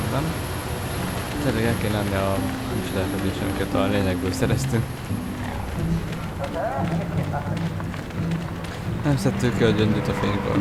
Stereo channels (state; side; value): identical; both; correlation 1.00